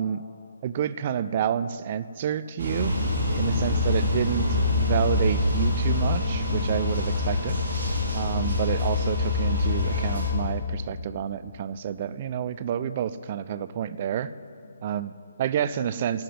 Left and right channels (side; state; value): both; inverted; correlation -0.55